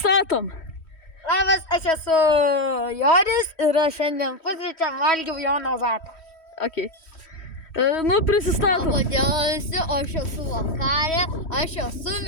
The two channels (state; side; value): late; right; 3.1 ms